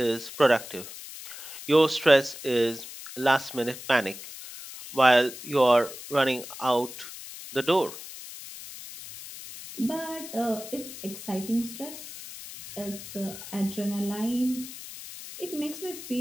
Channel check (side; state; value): left; noise; hiss, 13 dB below the sound